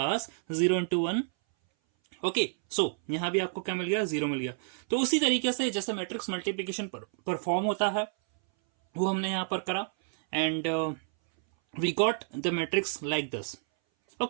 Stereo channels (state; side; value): silent; left; 58 dB below the other